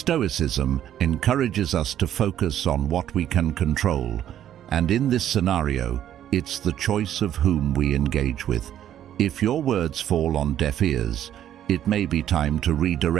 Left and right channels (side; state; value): left; quieter; 11.0 dB